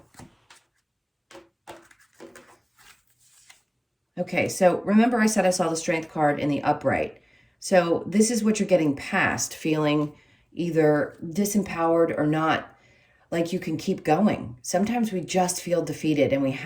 Okay, so remember I said I saw the Strength card in the upright. So this is what you're getting past, feeling either disempowered or not like you can keep going. Sometimes we just feel defeated and we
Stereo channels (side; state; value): both; identical; correlation 1.00